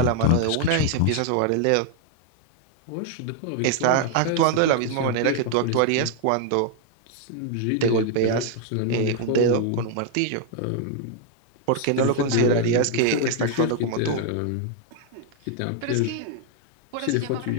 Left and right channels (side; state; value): both; different; correlation 0.00